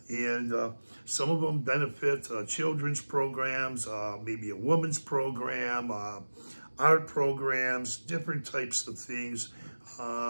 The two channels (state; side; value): inverted; both; correlation -1.00